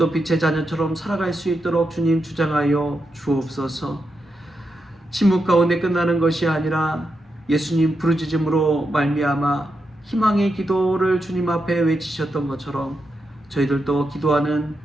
빛의 자녀처럼 살아갈 수 있도록 주님 주장하여 주옵소서. 침묵 가운데 끝나는 것이 아니라 예수님 부르짖음으로 말미암아 희망의 기도를 주님 앞에 외치셨던 것처럼 저희들도 기도하는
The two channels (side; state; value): both; normal; correlation 0.86